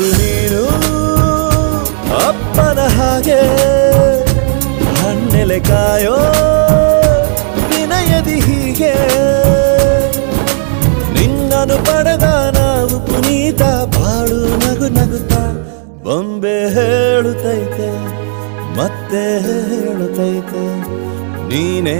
ನೀನು ಅಪ್ಪನ ಹಾಗೆ ಹಣ್ಣೆಲೆ ಕಾಯೋ ವಿನಯದಿ ಹೀಗೆ ನಿನ್ನನು ಪಡೆದ ನಾವು ಪುನೀತ ಬಾಳು ನಗು ನಗುತ್ತಾ ಬೊಂಬೆ ಹೇಳುತ್ತೈತೆ ಮತ್ತೆ ಹೇಳುತ್ತೈತೆ ನೀನೇ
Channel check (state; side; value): silent; left; digital silence